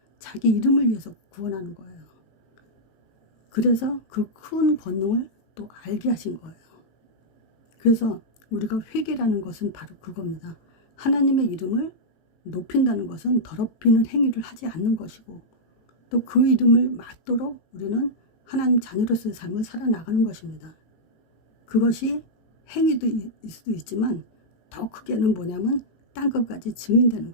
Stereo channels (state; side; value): late; right; 18 ms